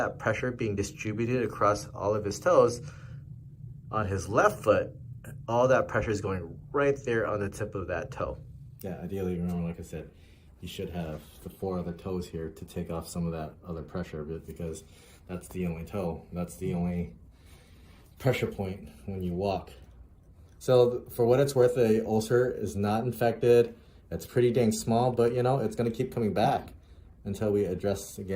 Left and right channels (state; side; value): identical; both; correlation 1.00